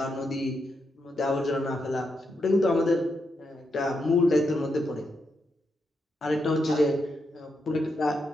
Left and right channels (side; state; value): both; normal; correlation 0.83